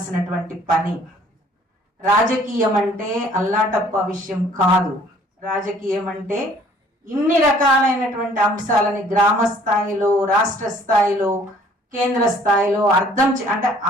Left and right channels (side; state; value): both; normal; correlation 0.57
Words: పని. రాజకీయం అంటే అల్లాటప్ప విషయం కాదు. రాజకీయం అంటే ఇన్ని రకాలైనటువంటి అంశాలని గ్రామ స్థాయిలో, రాష్ట్ర స్థాయిలో, కేంద్ర స్థాయిలో అంటే